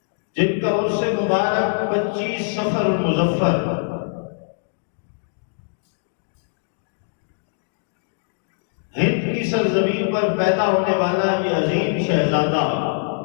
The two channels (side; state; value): right; silent; digital silence